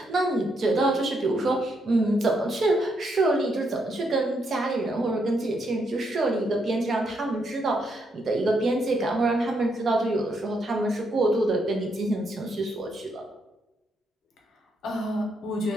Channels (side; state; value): both; normal; correlation 0.77